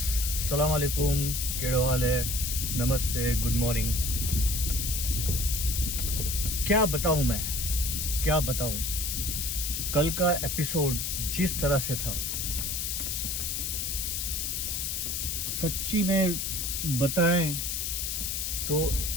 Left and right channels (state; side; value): noise; left; hiss, 1 dB below the sound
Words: सलाम अलैकुम। केड़ो हाल है? नमस्ते, गुड मॉर्निंग। क्या बताऊं मैं, क्या बताऊं। कल का एपिसोड जिस तरह से था, सच्ची में बताएं तो